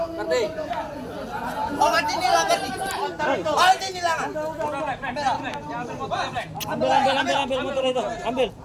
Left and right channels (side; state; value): both; identical; correlation 1.00